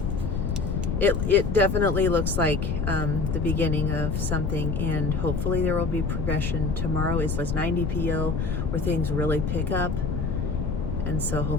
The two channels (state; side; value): noise; left; rumble, 1 dB below the sound